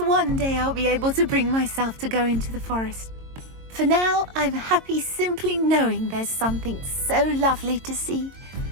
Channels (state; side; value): late; left; 22 ms